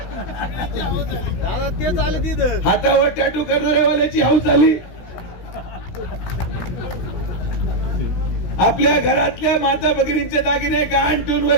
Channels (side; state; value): right; late; 17 ms